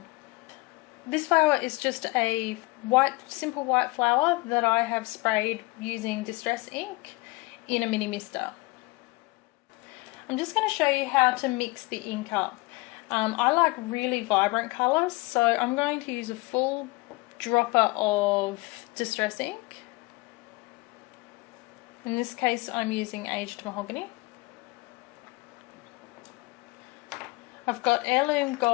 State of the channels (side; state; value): right; quieter; 24.0 dB